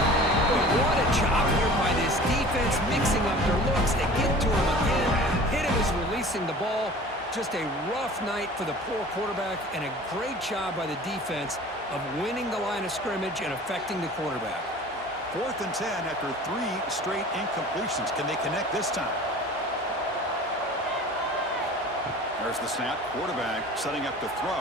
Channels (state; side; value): normal; both; correlation 0.43